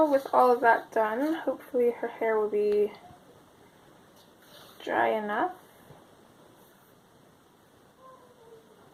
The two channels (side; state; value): both; identical; correlation 1.00